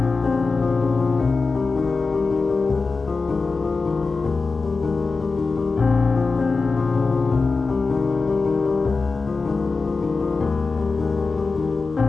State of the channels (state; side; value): quieter; right; 4.1 dB